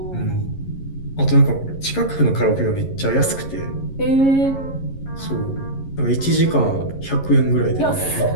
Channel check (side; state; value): right; late; 11 ms